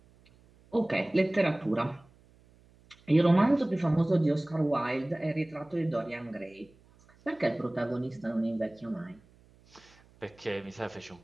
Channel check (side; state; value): right; noise; hum, 29 dB below the sound